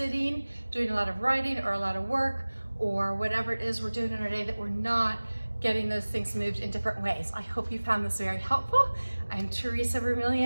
doing a lot of writing or a lot of work or whatever it is we're doing in our day that we're not getting those things moved in different ways. I hope you found this very helpful. I'm Teresa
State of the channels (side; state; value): both; inverted; correlation -1.00